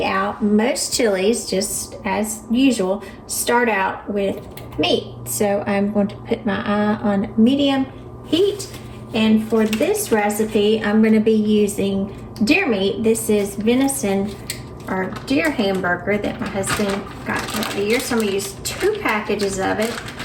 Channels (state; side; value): identical; both; correlation 1.00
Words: out, most chilies, just as usual, start out with meat. So I'm going to put my eye on medium heat, and for this recipe I'm going to be using deer meat. This is venison or deer hamburger that my husband got throughout the year. So I'm going to use 2 packages of it,